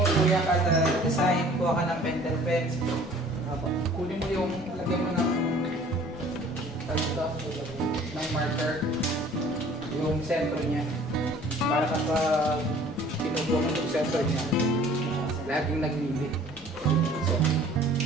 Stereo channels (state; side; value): normal; both; correlation 0.51